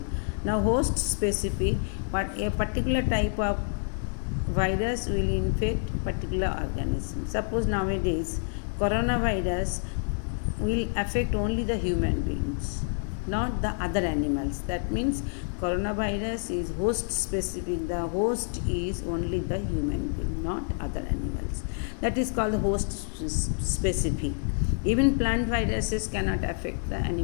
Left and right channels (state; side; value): silent; right; 59 dB below the other